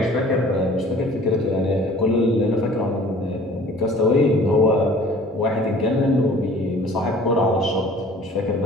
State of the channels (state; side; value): normal; both; correlation 0.49